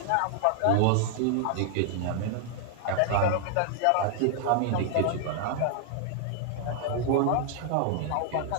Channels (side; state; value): both; different; correlation -0.01